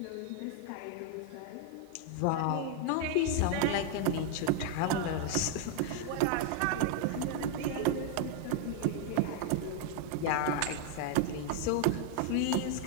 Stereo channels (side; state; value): both; different; correlation 0.00